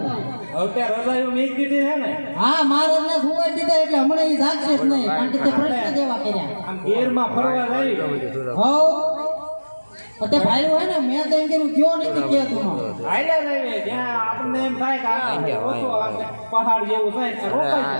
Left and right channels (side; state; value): both; inverted; correlation -1.00